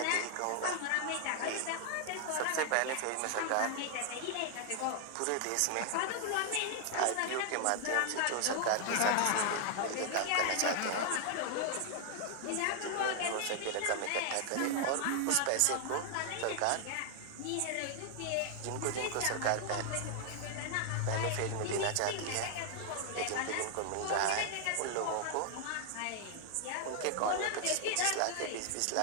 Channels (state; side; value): different; both; correlation 0.00